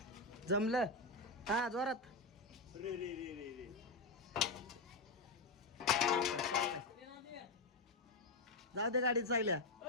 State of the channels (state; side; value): quieter; right; 3.1 dB